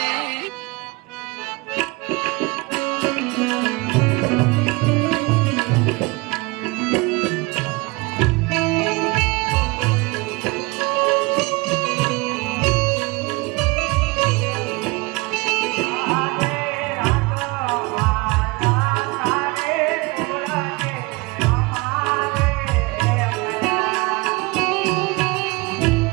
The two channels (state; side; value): quieter; left; 24.8 dB